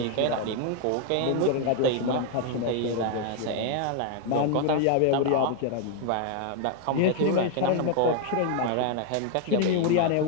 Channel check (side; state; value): both; different; correlation 0.00